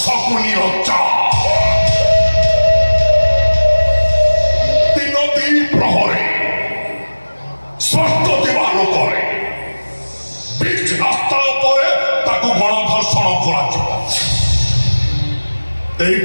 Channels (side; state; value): both; inverted; correlation -1.00